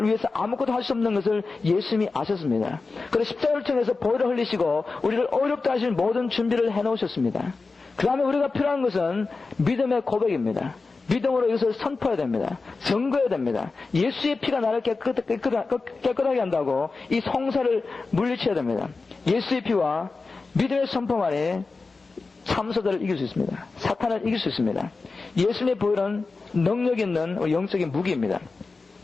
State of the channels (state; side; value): quieter; right; 4.0 dB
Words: 위해서 아무것도 할 수 없는 것을 예수님이 아셨습니다. 그래서 십자가를 통해서 보혈을 흘리시고 우리를 어렵다 하신 모든 준비를 해놓으셨습니다. 그 다음에 우리가 필요한 것은 믿음의 고백입니다. 믿음으로 이것을 선포해야 됩니다. 증거해야 됩니다. 예수의 피가 나를 깨끗하게 한다고 이 송사를 물리쳐야 됩니다. 예수의 피와 믿음의 선포만이 참소자를 이길 수 있습니다. 사탄을 이길 수 있습니다. 예수님의 보혈은 능력 있는 영적인 무기입니다.